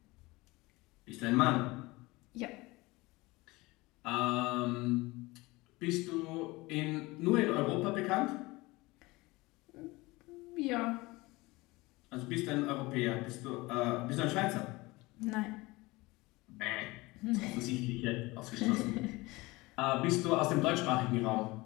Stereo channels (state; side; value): quieter; right; 22.1 dB